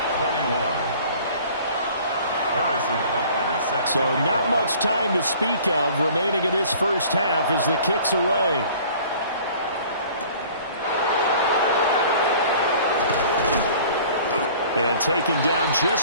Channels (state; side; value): inverted; both; correlation -0.49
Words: 21. Harrison Butker set So to not kick much time to speak of remaining in this first half as the kick's away. And taken down